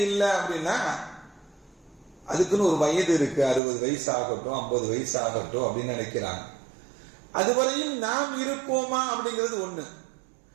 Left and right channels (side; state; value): left; drops out; at 3.6 s